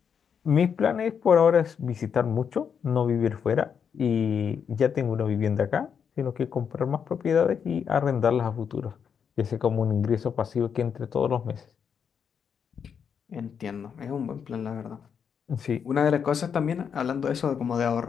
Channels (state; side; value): quieter; right; 7.2 dB